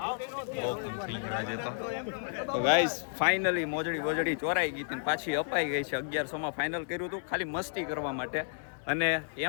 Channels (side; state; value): right; silent; digital silence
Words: બહુ કામ થઈ ગયું આજે તો ગાઈસ ફાઇનલી મોજડી ચોરાઈ ગઈ હતી ને પાછી અપાઈ ગઈ છે. 1100 માં ફાઇનલ કર્યું હતું ખાલી મસ્તી કરવા માટે અને